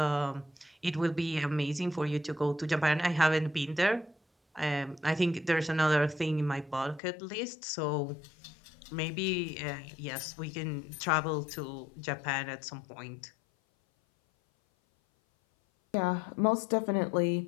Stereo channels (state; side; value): drops out; right; at 7.0 s